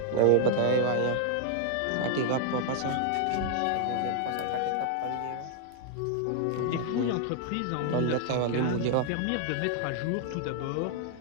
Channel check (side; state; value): both; different; correlation 0.00